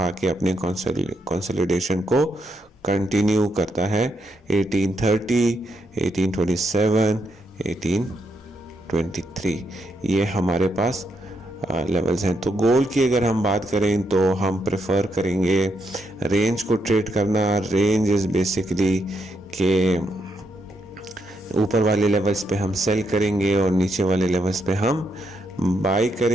आके अपने कंसोलिडेशन को कंटिन्यू करता है 1830, 1827, 1823। ये हमारे पास लेवल्स हैं। तो गोल्ड की अगर हम बात करें तो हम प्रेफर करेंगे रेंज को ट्रेड करना। रेंज इज़ बेसिकली के ऊपर वाले लेवल्स पे हम सेल करेंगे और नीचे वाले लेवल्स पे हम बाई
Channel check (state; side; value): normal; both; correlation 0.79